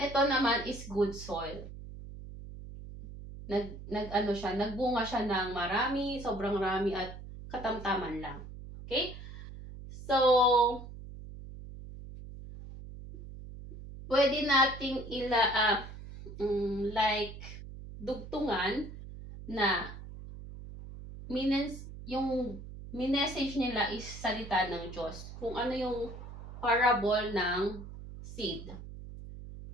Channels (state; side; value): noise; right; hum, 12 dB below the sound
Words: ito naman is good soil. Nagbunga siya ng marami, sobrang rami, at katamtaman lang, okay? So, pwede nating like dugtungan na yung message nila is salita ng Diyos. Kung ano yung parable ng seed.